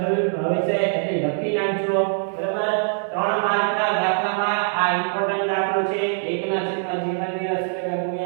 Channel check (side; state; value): left; silent; digital silence